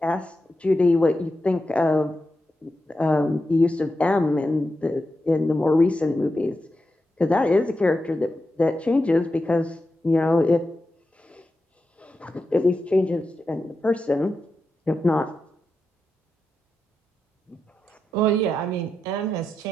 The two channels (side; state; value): both; normal; correlation 0.89